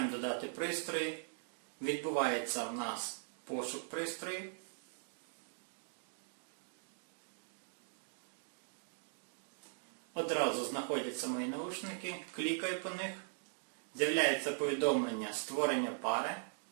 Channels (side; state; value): left; silent; digital silence